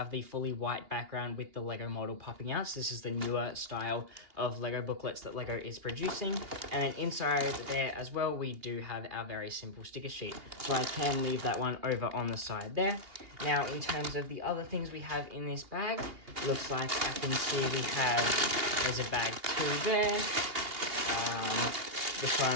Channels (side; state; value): left; late; 2.8 ms